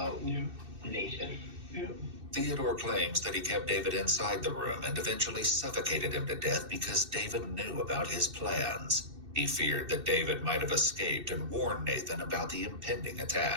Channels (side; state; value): left; late; 2.6 ms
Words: Nathan. Yeah. Theodore claims that he kept David inside the room and eventually suffocated him to death because David knew about his plans. He feared that David might have escaped and warned Nathan about the impending